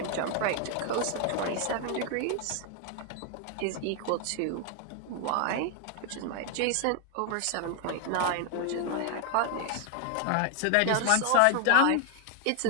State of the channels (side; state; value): both; different; correlation 0.00